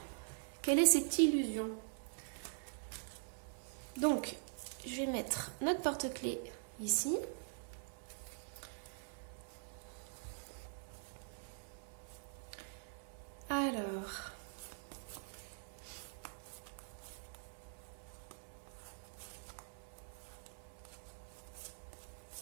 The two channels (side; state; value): left; silent; digital silence